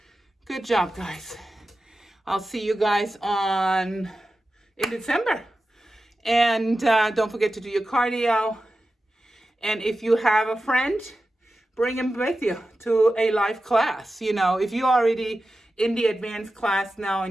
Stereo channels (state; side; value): normal; both; correlation 0.93